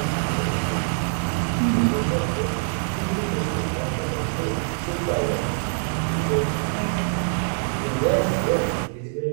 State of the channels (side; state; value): left; silent; 62 dB below the other